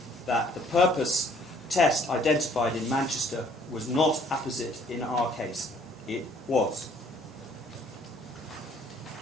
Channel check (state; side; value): normal; both; correlation 0.60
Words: that the purpose test identified in Manchester was not apposite in our case. It was.